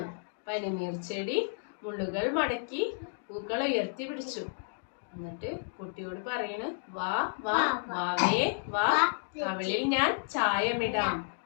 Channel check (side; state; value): right; silent; digital silence